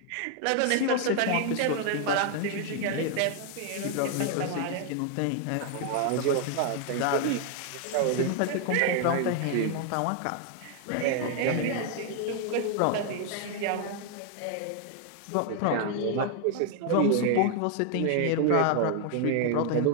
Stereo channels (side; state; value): both; different; correlation 0.00